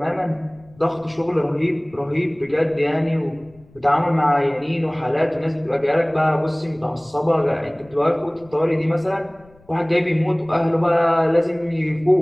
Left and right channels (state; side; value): noise; left; rumble, 27 dB below the sound